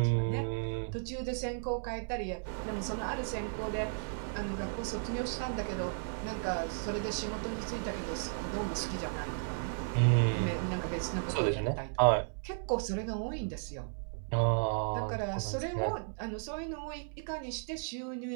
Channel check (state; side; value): silent; left; digital silence